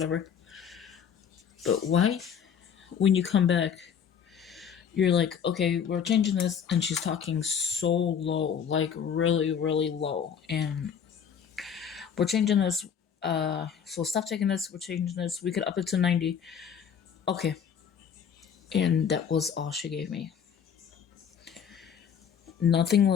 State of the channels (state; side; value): quieter; right; 7.7 dB